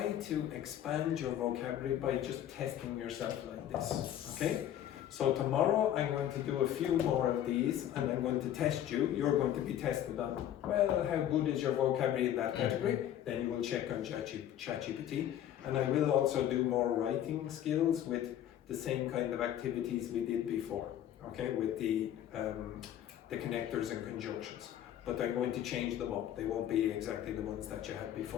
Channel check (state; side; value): quieter; right; 11.2 dB